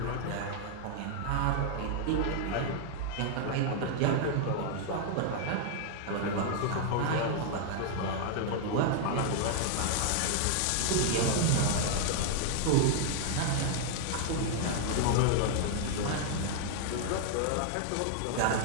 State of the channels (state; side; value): different; both; correlation -0.01